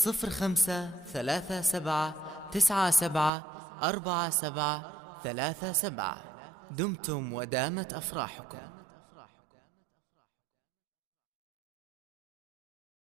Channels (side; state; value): left; drops out; at 3.3 s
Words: 37 97 47 37. دمتم ودامت أفراحكم.